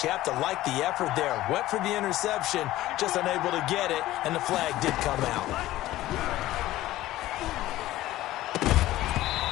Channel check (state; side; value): quieter; right; 15.7 dB